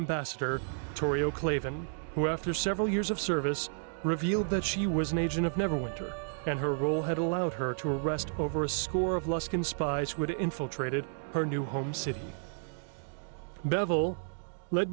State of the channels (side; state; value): left; silent; digital silence